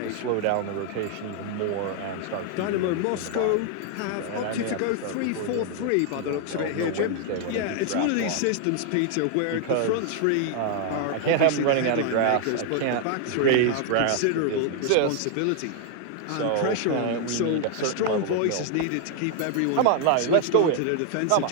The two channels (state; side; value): different; both; correlation 0.00